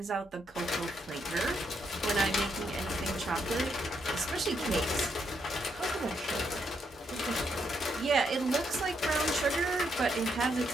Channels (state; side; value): normal; both; correlation 0.77